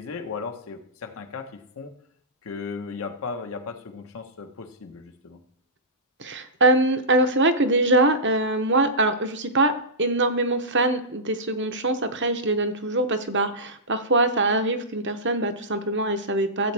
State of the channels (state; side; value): normal; both; correlation -0.17